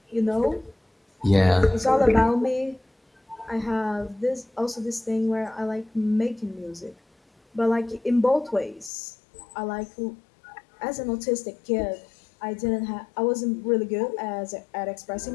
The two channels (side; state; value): right; drops out; at 8.9 s